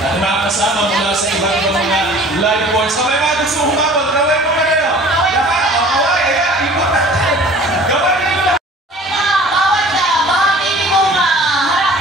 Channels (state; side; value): normal; both; correlation 0.47